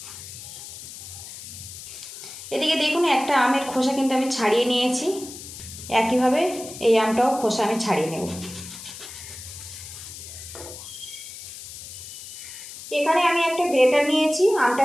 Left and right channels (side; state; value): left; noise; hiss, 13 dB below the sound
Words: এদিকে দেখুন একটা আমের খোসা কিন্তু আমি ছাড়িয়ে নিয়েছি। একইভাবে এই আমটাও খোসা আমি ছাড়িয়ে নেব। এখানে আমি একটা গ্রেটার নিয়েছি, আমটা